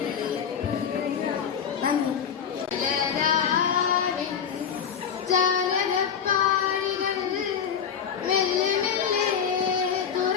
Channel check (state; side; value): quieter; right; 7.5 dB